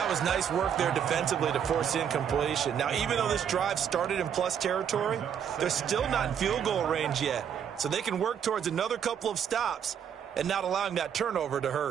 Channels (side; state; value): left; quieter; 8.4 dB